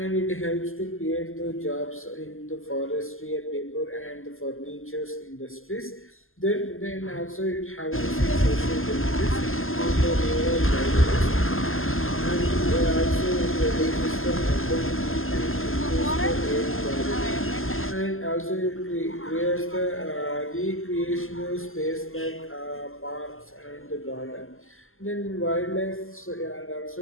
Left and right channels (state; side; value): late; right; 0.60 ms